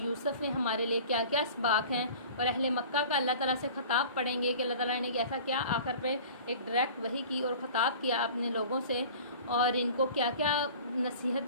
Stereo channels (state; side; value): inverted; both; correlation -0.43